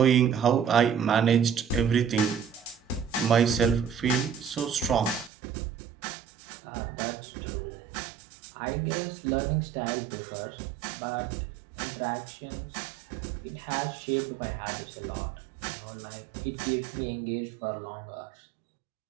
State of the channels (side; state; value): left; drops out; at 5.3 s